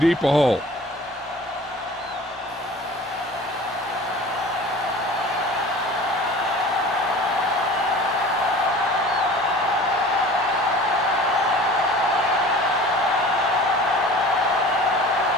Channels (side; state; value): both; normal; correlation 0.42